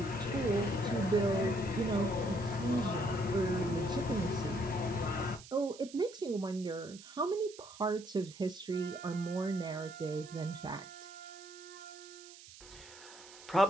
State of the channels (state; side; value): noise; right; hiss, 18 dB below the sound